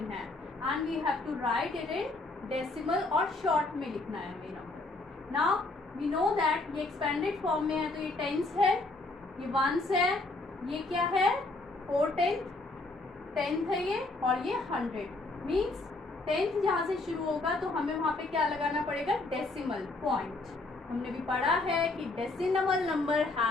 है, and we have to write it in decimal और शॉर्ट में लिखना है ये number. Now we know that ये एक्सपेंडेड फॉर्म में है तो ये टेंस है, ये वंस है, ये क्या है 4/10 टेंथ है ये, और ये 100 मीन्स टेंथ जहाँ से शुरू होगा तो हमें वहाँ पे क्या लगाना पड़ेगा डेसिमल पॉइंट। हमने भी पढ़ा है कि decimal number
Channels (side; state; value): right; quieter; 3.1 dB